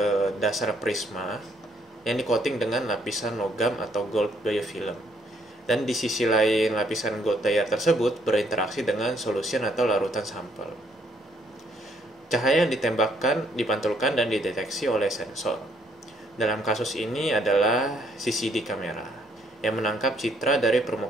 dasar prisma yang di-coating dengan lapisan logam atau gold biofilm. Dan di sisi lain lapisan gold layer tersebut berinteraksi dengan solution atau larutan sampel. Cahaya yang ditembakkan, dipantulkan, dan dideteksi oleh sensor. Dalam kasus ini adalah CCD kamera yang menangkap citra dari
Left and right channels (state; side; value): normal; both; correlation 0.68